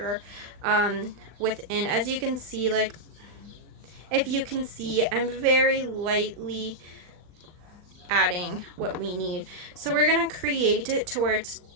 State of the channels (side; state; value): left; late; 39 ms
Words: within. As you can see, like, if you can see, I'm very lightly adding what we need. So we're going to create it to where it's